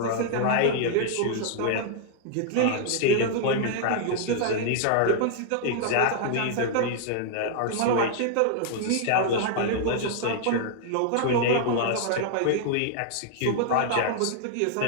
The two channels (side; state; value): both; different; correlation -0.01